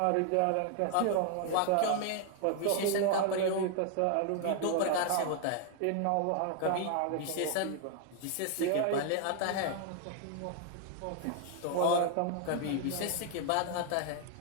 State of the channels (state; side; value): different; both; correlation 0.00